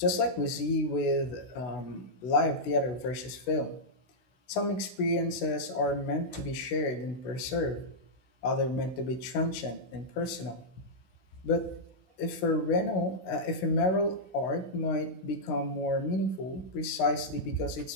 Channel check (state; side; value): late; right; 16 ms